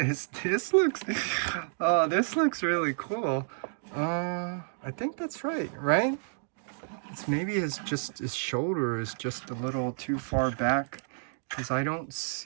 this looks, oh, this looks really cool. I think that's right? It's maybe his shoulder is just a little too far back, because I don't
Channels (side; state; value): left; silent; digital silence